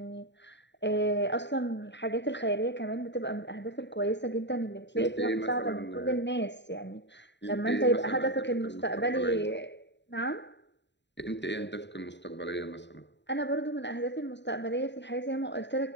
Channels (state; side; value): late; right; 0.52 ms